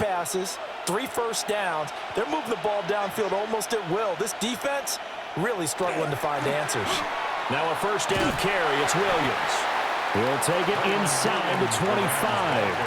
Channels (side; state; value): both; identical; correlation 1.00